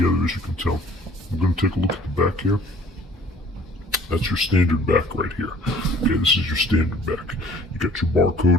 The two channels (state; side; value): normal; both; correlation 0.54